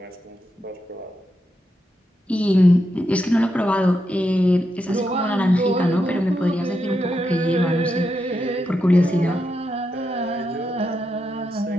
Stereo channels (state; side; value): normal; both; correlation 0.84